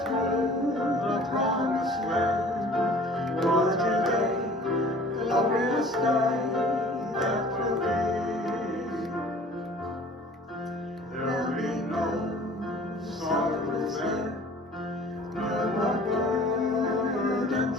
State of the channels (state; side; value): normal; both; correlation 0.49